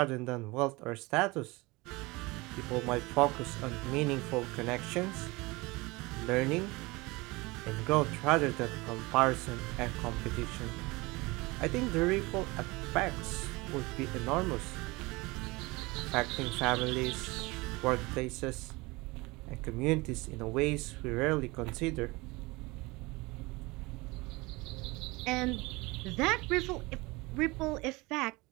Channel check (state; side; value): quieter; left; 23.5 dB